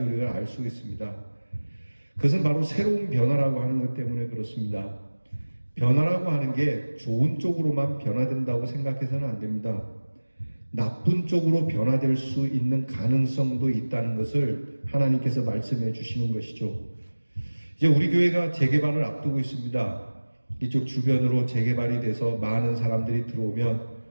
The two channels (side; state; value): both; inverted; correlation -1.00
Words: 우리가 알 수 있습니다. 그것은 바로 새로운 변화라고 하는 것 때문에 그렇습니다. 변화라고 하는 게 좋은 쪽으로만 변화된다고 생각해서는 안 됩니다. 나쁜 쪽으로 변화될 수 있는 가능성도 있다는 것을 하나님께서 말씀해 주시는 것이죠. 이제 우리 교회가 재개발을 앞두고 있습니다. 이쪽 주변으로 재개발이 돼서 많은 사람들이 들어오면